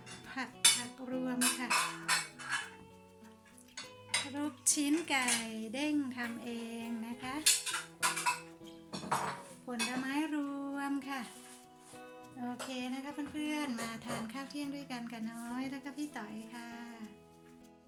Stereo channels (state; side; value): identical; both; correlation 1.00